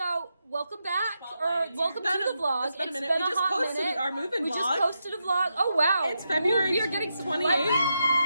welcome back, or welcome to the vlog. It's been a minute. We just hot posted minute. our moving We vlog. just posted a vlog. Oh wow, It's February we are getting some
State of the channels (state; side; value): inverted; both; correlation -0.85